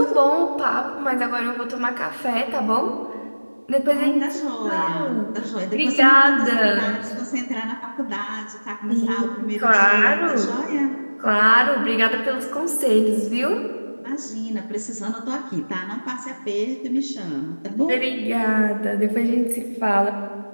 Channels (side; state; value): both; inverted; correlation -1.00